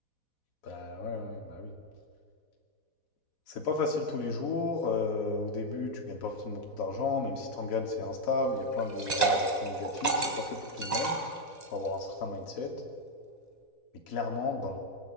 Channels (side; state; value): right; late; 4.1 ms